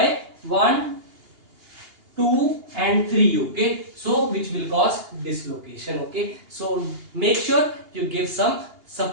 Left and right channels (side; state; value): left; late; 2.8 ms